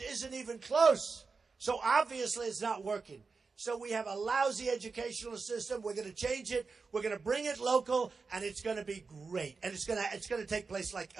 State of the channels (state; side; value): quieter; left; 4.5 dB